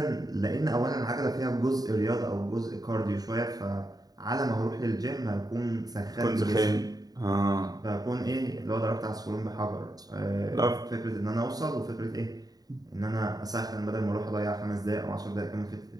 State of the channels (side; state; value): left; late; 0.18 ms